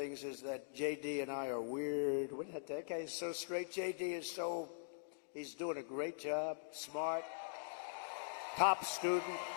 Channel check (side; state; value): right; silent; digital silence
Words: is that JD and I are weird. That guy is so straight. JD is he's doing a great job, smart, top student,